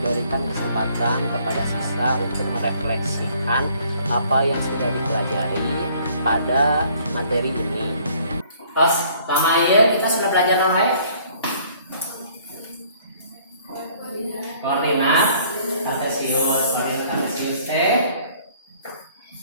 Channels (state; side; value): inverted; both; correlation -0.59